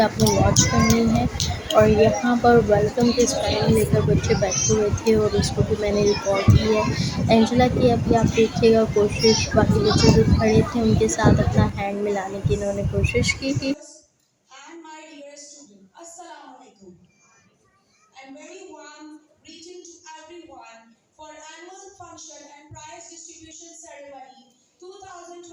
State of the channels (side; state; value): both; identical; correlation 1.00